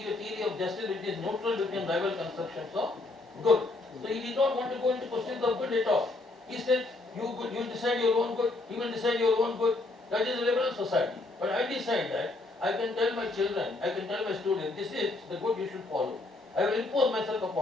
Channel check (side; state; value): right; quieter; 3.1 dB